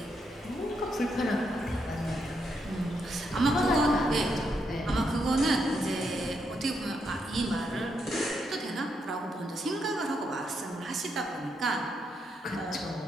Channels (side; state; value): both; normal; correlation 0.79